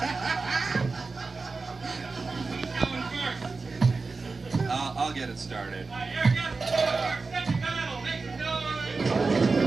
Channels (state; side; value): quieter; left; 4.1 dB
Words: Who's going first? I'll get it started.